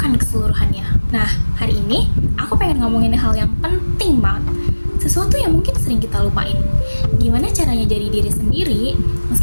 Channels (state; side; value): inverted; both; correlation -1.00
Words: keseluruhannya. Nah, hari ini aku pengen ngomongin hal yang penting banget. Sesuatu yang mungkin sering kita lupain. Gimana caranya jadi diri sendiri,